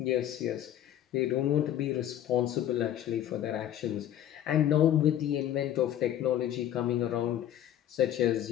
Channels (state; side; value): quieter; right; 11.4 dB